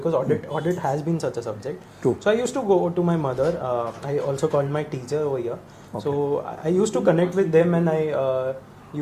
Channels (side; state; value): both; identical; correlation 1.00